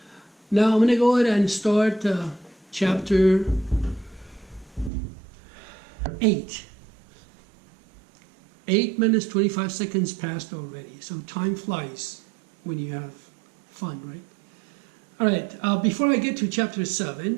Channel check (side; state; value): left; drops out; at 4.9 s